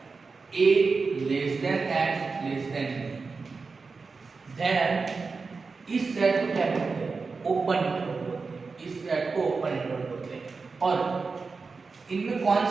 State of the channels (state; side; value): quieter; left; 4.5 dB